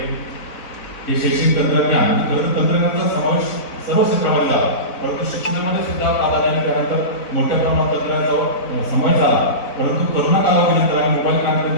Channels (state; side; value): late; right; 4.0 ms